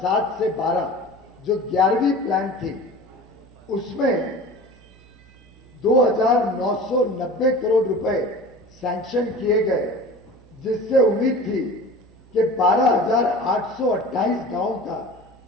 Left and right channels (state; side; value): noise; right; hum, 26 dB below the sound